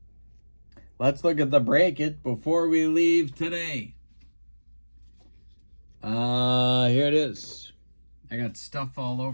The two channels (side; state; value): both; inverted; correlation -1.00